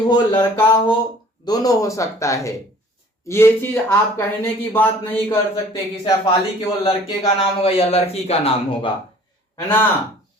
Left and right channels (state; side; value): normal; both; correlation 0.51